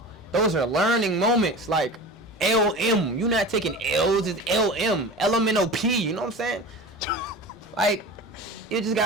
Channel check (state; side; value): normal; both; correlation 0.33